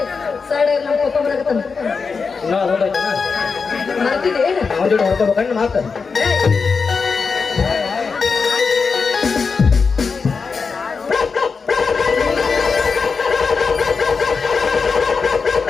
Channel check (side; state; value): right; quieter; 5.1 dB